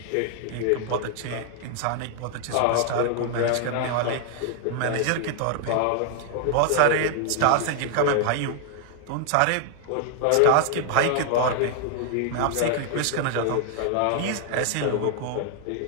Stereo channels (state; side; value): different; both; correlation 0.00